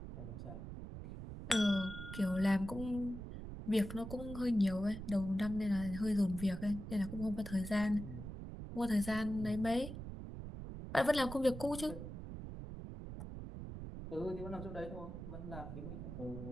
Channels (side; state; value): right; noise; rumble, 9 dB below the sound